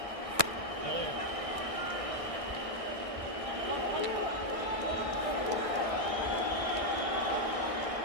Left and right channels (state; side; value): late; left; 1.6 ms